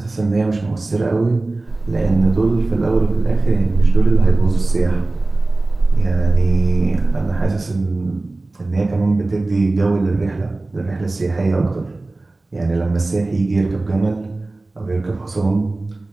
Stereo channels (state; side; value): quieter; left; 3.1 dB